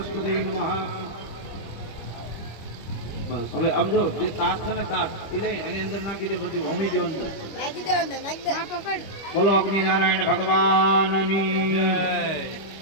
નમઃ. બસ હવે આમ જો જે તાસ છે ને તાસ એ લઈ એની અંદર નાખી દો, બધી હોમી દો અંદર. નાખી દે અંદર, નાખી દે. હા પકડ. બોલો અગ્નિ નારાયણ ભગવાનની જય.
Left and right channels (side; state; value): right; late; 25 ms